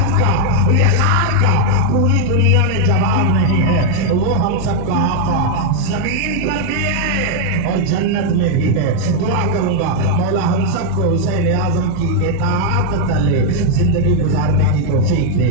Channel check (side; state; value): both; different; correlation 0.00